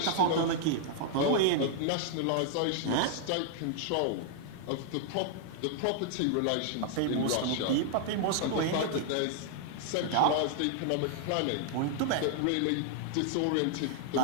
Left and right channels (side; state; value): both; different; correlation 0.00